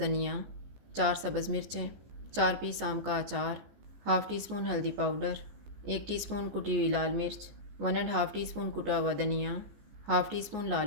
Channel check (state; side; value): late; left; 14 ms